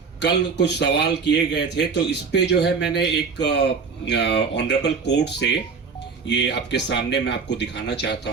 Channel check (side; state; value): left; quieter; 5.2 dB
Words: कल कुछ सवाल किए गए थे, तो इस पे जो है मैंने एक ऑनरेबल कोर्ट से ये आपके सामने मैं आपको दिखाना चाहता